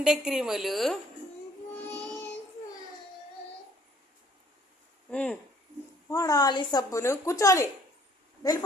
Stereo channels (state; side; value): normal; both; correlation 0.60